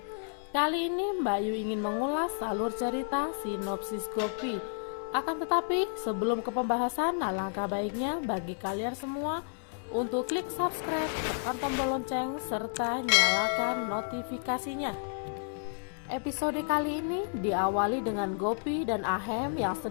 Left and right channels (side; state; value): right; silent; 57 dB below the other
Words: Kali ini Bayu ingin mengulas alur cerita sinopsis Gopi. Akan tetapi sebelum ke pembahasan, alangkah baiknya bagi kalian semua untuk klik subscribe, tekan tombol lonceng, serta nyalakan notifikasinya. Episode kali ini diawali dengan Gopi dan Ahem yang